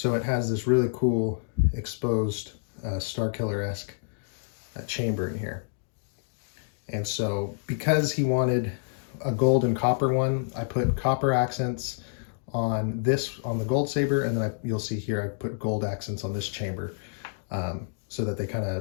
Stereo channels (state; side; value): silent; right; digital silence